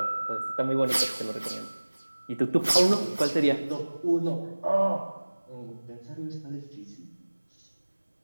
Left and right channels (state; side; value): inverted; both; correlation -1.00